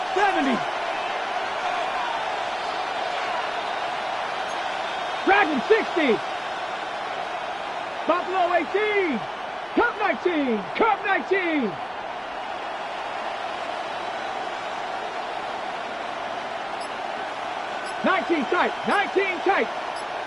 70. Dragon 60. Buffalo 18. Cup 19. Cup 19. Tight. 19 tight.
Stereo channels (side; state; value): both; identical; correlation 1.00